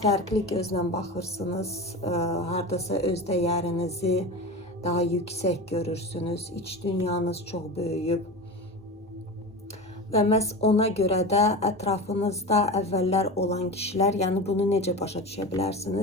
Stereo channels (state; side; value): normal; both; correlation 0.27